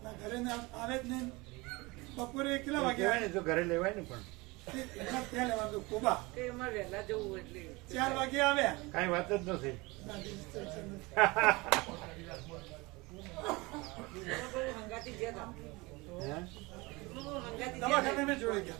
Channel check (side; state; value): left; quieter; 24.0 dB